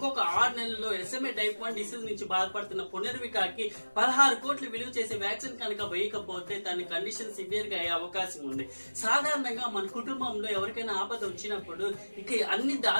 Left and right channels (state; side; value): inverted; both; correlation -1.00